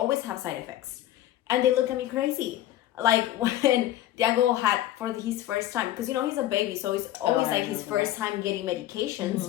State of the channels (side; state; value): right; quieter; 13.7 dB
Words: have side effects. And they look at me crazy. Like when Diego had for his first time, because he's a baby, so it's always like his first time getting medications.